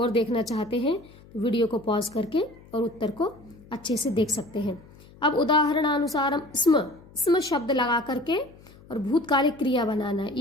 देखना चाहते हैं तो वीडियो को पॉज करके और उत्तर को अच्छे से देख सकते हैं। अब उदाहरणानुसारम स्म शब्द लगा करके और भूतकालिक क्रिया बनाना है।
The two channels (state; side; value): noise; left; hum, 23 dB below the sound